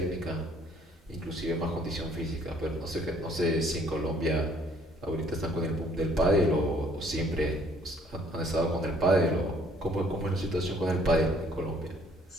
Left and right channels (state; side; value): normal; both; correlation 0.61